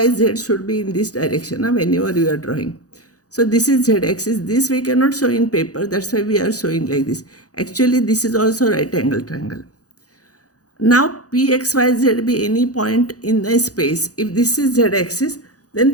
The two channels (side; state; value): right; late; 0.67 ms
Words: z should be in this direction whenever you are drawing. So this is z-axis. This we cannot show in paper. That's why we are showing like this. Actually, this is also right angle triangle. Now p, x, y, z be any point in the space. If this is z-axis,